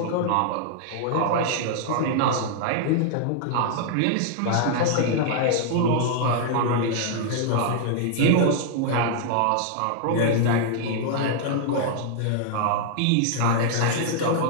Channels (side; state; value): both; different; correlation -0.01